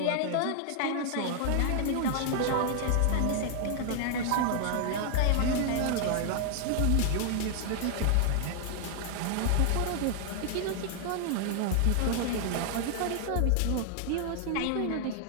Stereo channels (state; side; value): different; both; correlation 0.00